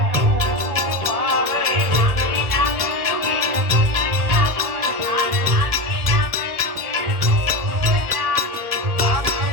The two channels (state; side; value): late; left; 1.6 ms